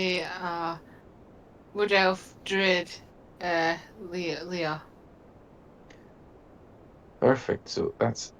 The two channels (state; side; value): identical; both; correlation 1.00